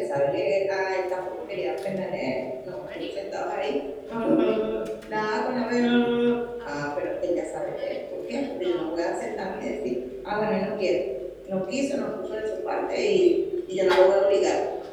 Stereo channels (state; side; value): identical; both; correlation 1.00